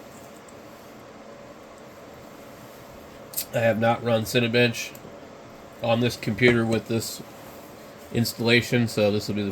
I have not run Cinebench on this computer with this installation, so this will be the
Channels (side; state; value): both; identical; correlation 1.00